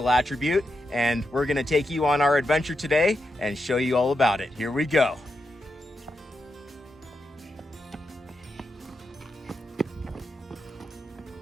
attribute, and we're gonna take you on our adventure today and show you all about it. Here we go.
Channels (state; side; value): normal; both; correlation 0.86